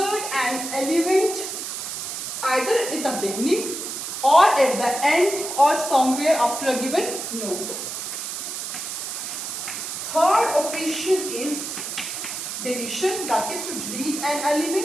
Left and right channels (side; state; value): right; noise; hiss, 5 dB below the sound